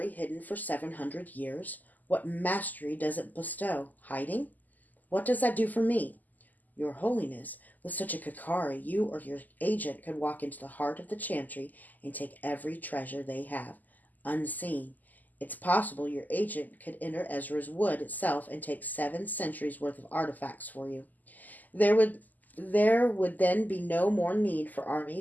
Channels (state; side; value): late; right; 0.083 ms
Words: hidden for 700 years? What mastery does it bestow? Hiding? What does that do for me? Your Holiness, with such a Kakari, you or your agent could walk into the heart of the Chantry and take every treasure they have, unseen. It's possible your agent could enter Ezra's wood itself and take 7 centuries' worth of artifacts for you. There would then be no more need for